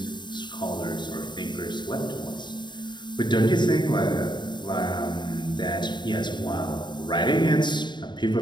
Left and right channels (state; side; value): late; right; 0.22 ms